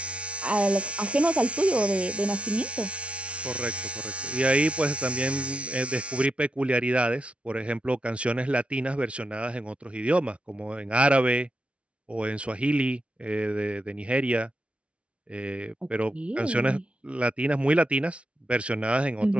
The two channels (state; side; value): late; left; 0.061 ms